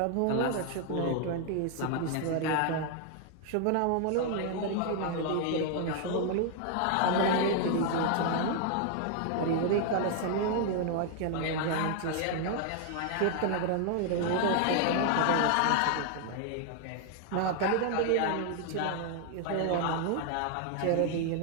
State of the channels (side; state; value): both; different; correlation 0.00